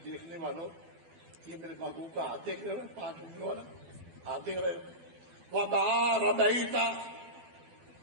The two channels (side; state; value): left; late; 12 ms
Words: دیکھنے والوں، یہ میرے محبوب کا ہاتھ دیکھ رہے ہو، 5 انگلیوں والا ہاتھ دیکھ رہے ہو۔ وَمَا رَمَيْتَ